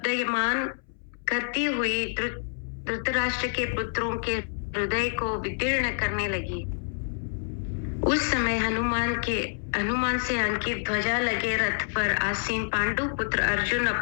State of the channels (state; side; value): silent; right; 60 dB below the other